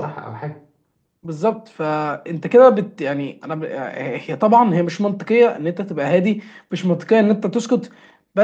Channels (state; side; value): identical; both; correlation 1.00